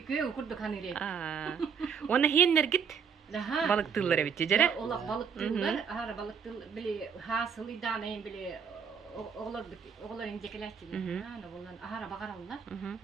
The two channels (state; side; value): quieter; left; 6.6 dB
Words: köy kurduk hanire. Ona hiyenler git. Daha Balık tılları bitti jere. Ola balık tıllar, ahara balık tıl bili hasıl idane bili oğlar incekeler çiğ. Ana bollan ahara bakarallar.